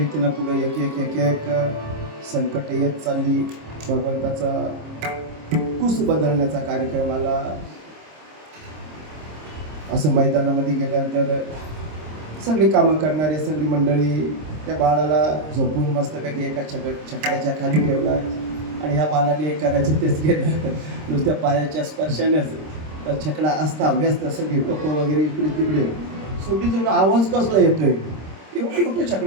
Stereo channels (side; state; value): left; late; 26 ms